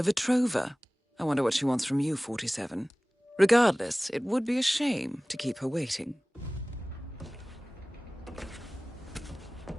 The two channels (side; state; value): both; normal; correlation 0.98